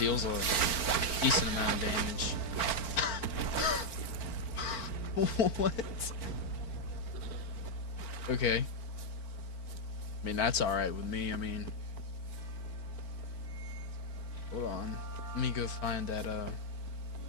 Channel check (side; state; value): right; late; 4.4 ms